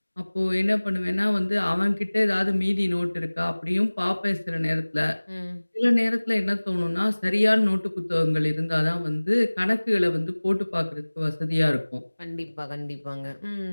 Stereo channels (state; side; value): inverted; both; correlation -1.00